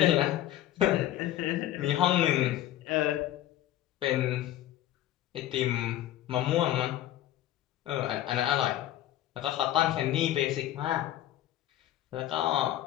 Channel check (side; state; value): right; quieter; 13.3 dB